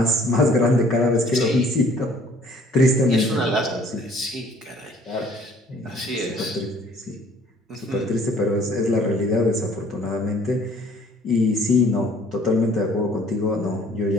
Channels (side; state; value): both; normal; correlation 0.56